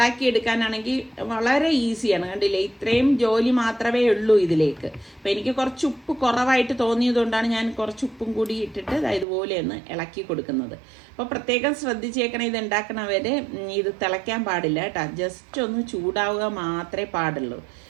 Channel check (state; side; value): drops out; left; at 9.2 s